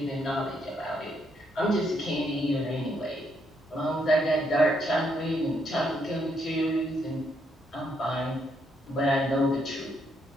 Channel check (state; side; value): normal; both; correlation 0.75